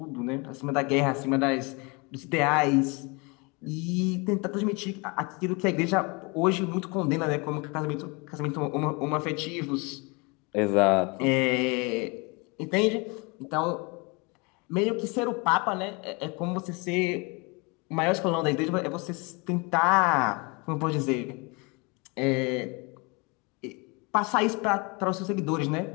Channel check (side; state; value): right; quieter; 29.1 dB